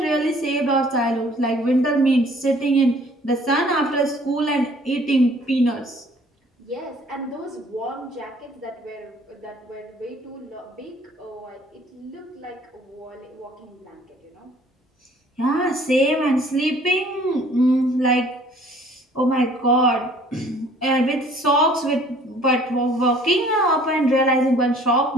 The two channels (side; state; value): both; normal; correlation 0.55